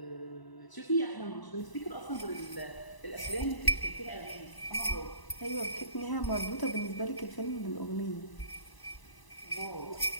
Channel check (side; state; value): right; late; 1.0 ms